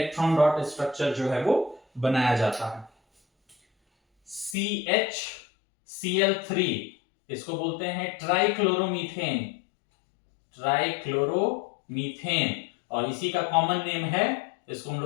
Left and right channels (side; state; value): right; drops out; at 4.5 s